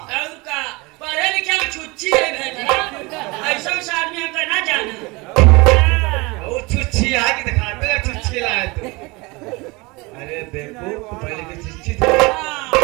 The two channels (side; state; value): left; quieter; 25.1 dB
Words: और का पढ़े लिखे में छुच्ची है भैया। ऐसा से आदमी हम करना जाना। वो छुच्छी है कि दिखाते हैं छुच्छी लाए तू। अरे देखो पहले की छुच्छी थी।